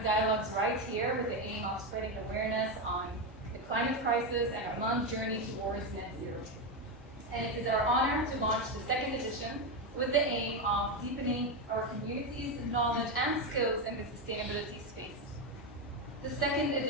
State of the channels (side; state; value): both; normal; correlation 0.10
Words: Dialogues right here with the aim of spreading awareness on the climate crisis and Oman's journey towards net zero. And it is our honor to launch the second edition with the aim of deepening our community's knowledge and skills in the sustainability space. The second